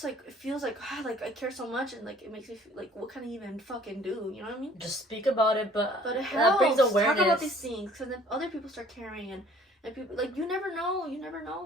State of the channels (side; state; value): both; normal; correlation 0.55